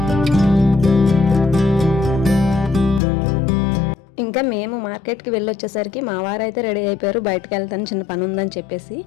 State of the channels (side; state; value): right; drops out; at 3.0 s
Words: ఇంకా మేము మార్కెట్కి వెళ్ళి వచ్చేసరికి మా వారైతే రెడీ అయిపోయారు, బయటకు వెళ్తాను చిన్న పని ఉందని చెప్పేసి.